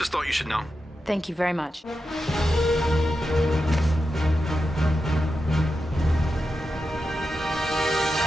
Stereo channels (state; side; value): normal; both; correlation 0.89